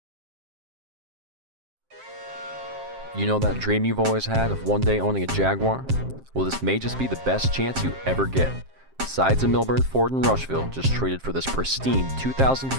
You know that dream you've always had of one day owning a Jaguar? Well, this may just be the best chance you ever get. Sides of Milburn, Ford, and Rushville just traded for this pristine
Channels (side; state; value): left; late; 7.6 ms